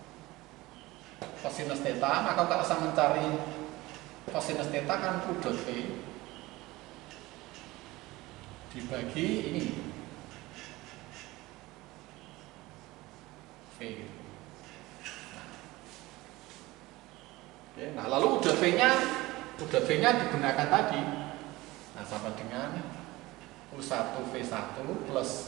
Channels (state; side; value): quieter; left; 19.8 dB